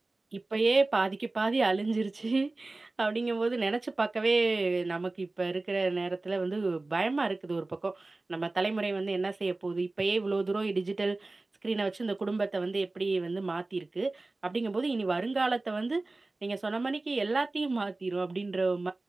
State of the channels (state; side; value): quieter; left; 3.1 dB